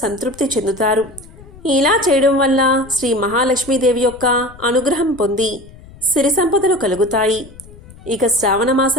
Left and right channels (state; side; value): noise; left; rumble, 20 dB below the sound